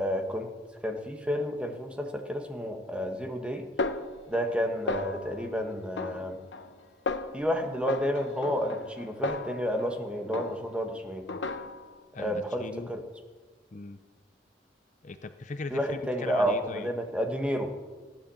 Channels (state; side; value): normal; both; correlation 0.60